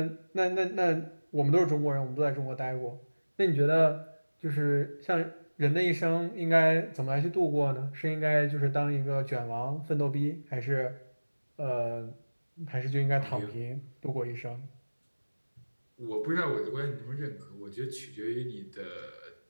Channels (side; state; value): both; inverted; correlation -1.00